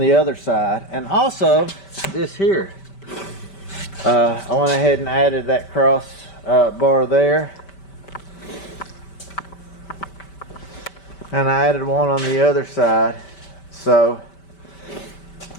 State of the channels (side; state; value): right; late; 5.1 ms